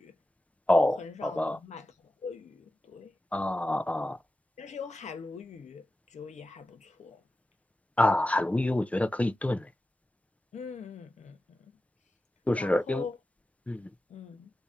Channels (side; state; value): both; normal; correlation 0.93